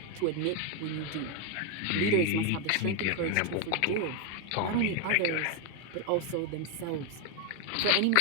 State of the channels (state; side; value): different; both; correlation 0.01